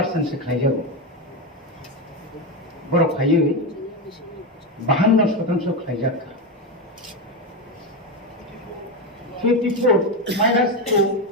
সে খাই যাব বড় খাইয়ে 52% খাই যাকা 54 মাইনাস 2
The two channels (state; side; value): normal; both; correlation 0.12